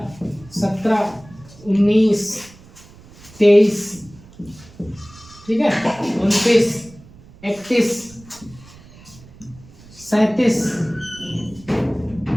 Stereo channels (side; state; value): right; noise; rumble, 22 dB below the sound